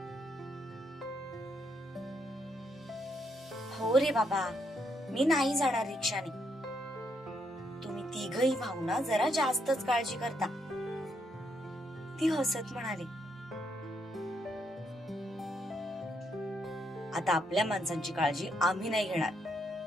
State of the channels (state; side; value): normal; both; correlation 0.76